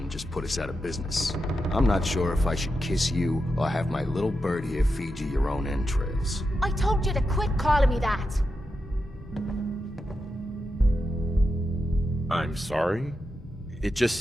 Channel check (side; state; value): both; normal; correlation 0.88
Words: just put us out of business. I'm not sure if I should kiss you or have my little bird here feed you your own entrails. I told you to quit calling me that. I'm sorry. It